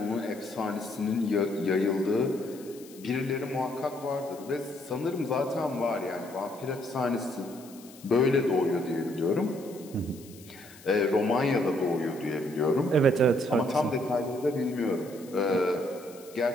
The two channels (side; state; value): left; noise; hiss, 21 dB below the sound